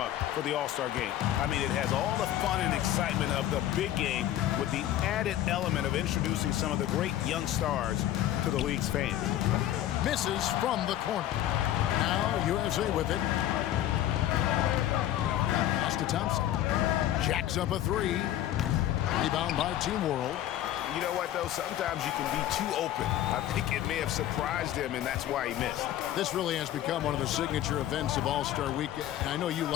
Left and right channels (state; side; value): quieter; right; 12.6 dB